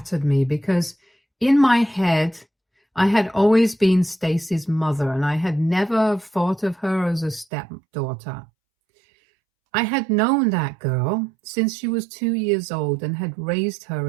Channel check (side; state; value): left; drops out; at 7.5 s